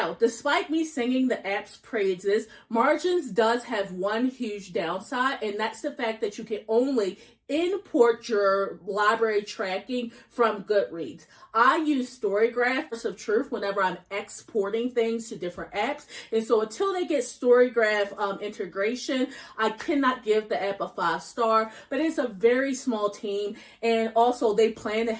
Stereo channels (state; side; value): identical; both; correlation 1.00